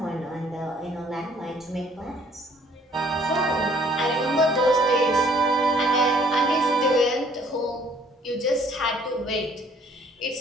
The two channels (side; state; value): both; normal; correlation 0.60